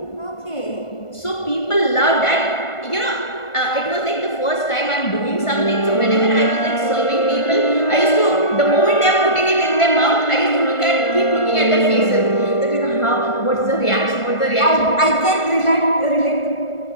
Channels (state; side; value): late; right; 1.5 ms